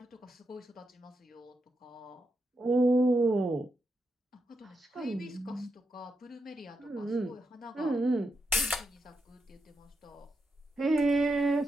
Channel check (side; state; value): both; normal; correlation 0.84